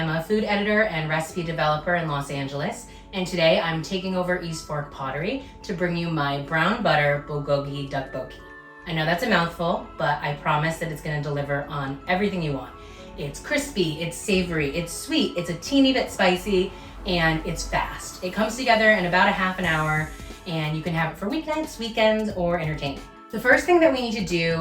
a food editor and recipe developer in Los Angeles, and today I'm taking over East Fork Pottery to bring you my brown butter Bulgogi Tteokbokki. I know that's a mouthful, but I promise that it's going to deliver on everything you want. It's crispy, it's savory, it's sweet, it's a teeny bit spicy, and it's fast. It comes together in about a half an hour, and you can have it for weeknights, weekends, or entertainment. The first thing that we need to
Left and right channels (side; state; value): both; identical; correlation 1.00